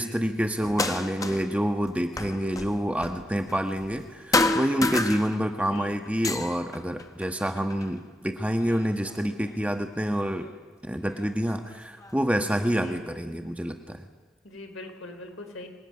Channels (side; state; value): both; normal; correlation 0.85